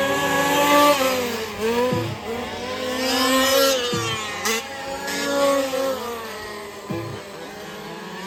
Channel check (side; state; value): both; identical; correlation 1.00